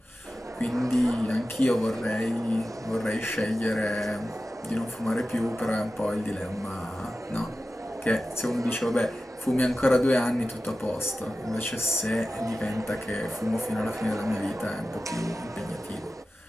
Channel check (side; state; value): both; normal; correlation 0.94